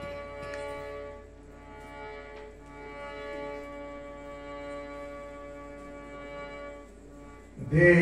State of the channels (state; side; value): identical; both; correlation 1.00